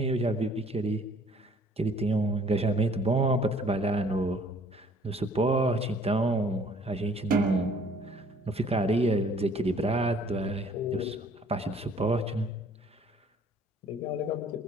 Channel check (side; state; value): both; normal; correlation 0.57